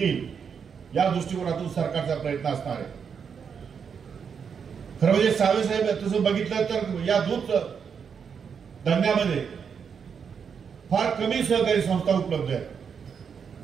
या दृष्टिकोनातून सरकारचा प्रयत्न असणार आहे। खरं म्हणजे साहेब तसं बघितलं तर या दूध धंद्यामध्ये फार कमी सहकारी संस्था उपलब्ध आहेत।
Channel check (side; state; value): left; quieter; 6.7 dB